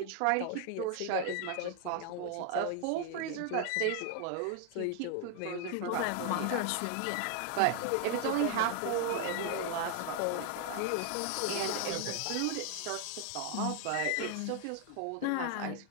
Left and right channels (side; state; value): both; different; correlation 0.00